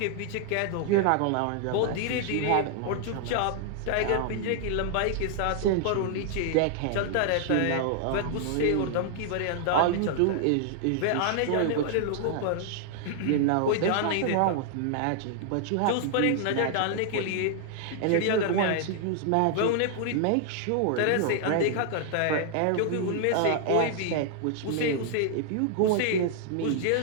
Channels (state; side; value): different; both; correlation -0.01